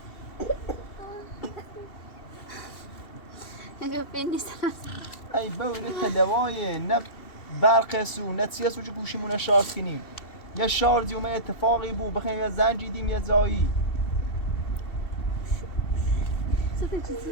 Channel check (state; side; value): late; right; 2.7 ms